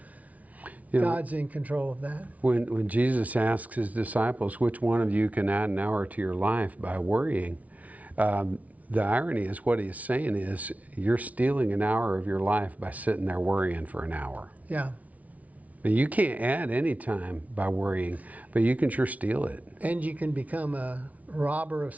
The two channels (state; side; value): late; left; 0.070 ms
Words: God's in control of that. When Jesus asks his disciples, which one of you can add an hour to your life by worrying, the irony is what he's saying is you're stealing an hour of your life by sitting there worrying for an hour. Yeah. You can't add any time by worrying, but you can sure steal it. And you can become a robber of